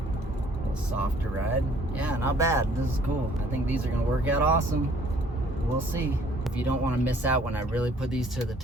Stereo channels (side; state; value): both; normal; correlation 0.58